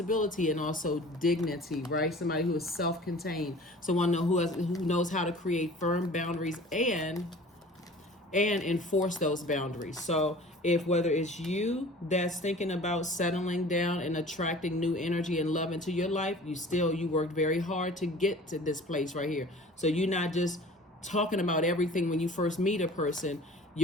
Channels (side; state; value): both; normal; correlation 0.44